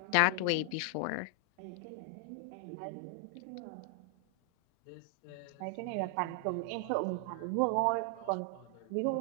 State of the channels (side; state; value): both; different; correlation 0.00